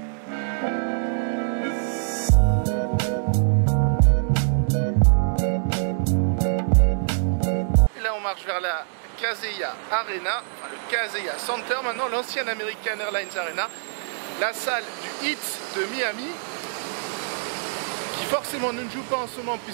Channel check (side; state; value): left; silent; digital silence